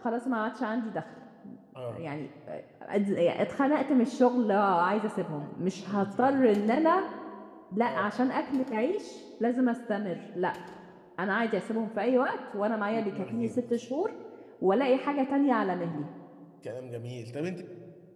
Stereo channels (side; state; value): both; identical; correlation 1.00